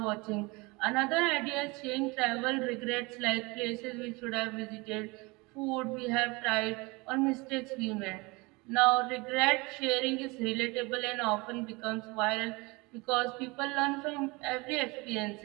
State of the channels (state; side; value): quieter; left; 25.4 dB